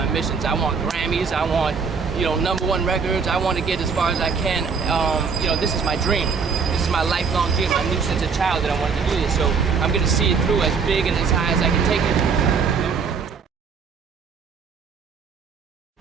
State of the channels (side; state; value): left; quieter; 5.6 dB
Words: missions. I want Grammys, I want, you know, #1 records, I want to get as far as I can. You know, this is my dream. This is my lifelong dream. I knew since a child that I wanted to do this, so I'm going to see it through as big and as high as I can take it.